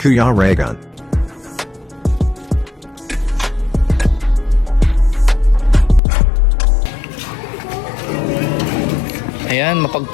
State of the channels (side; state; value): right; drops out; at 6.0 s